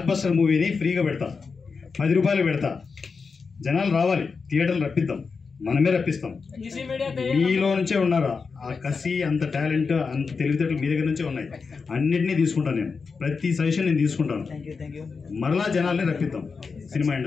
బస్టర్ మూవీని ఫ్రీగా పెడతా, 10 రూపాయలు పెడతా. జనాలు రావాలి, థియేటర్లు రప్పిద్దాం, మనమే రప్పిస్తాం. మీలో నుంచే ఉన్నారు ఆ కసి, అంత టాలెంట్, అంత తెలివితేటలు మీ దగ్గర నుంచే ఉన్నాయి. అన్నింటినీ తీసుకుంటాను నేను, ప్రతి సజెషన్ నేను తీసుకుంటాను. మరలా జనాల్ని రప్పిద్దాం సినిమా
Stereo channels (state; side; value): quieter; right; 5.0 dB